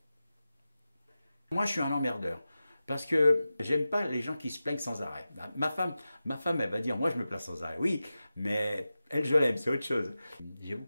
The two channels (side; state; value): both; inverted; correlation -0.94